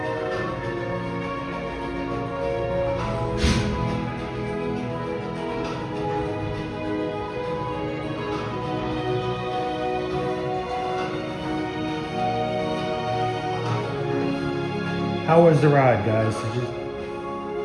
How was the ride, guys?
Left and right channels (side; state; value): both; identical; correlation 1.00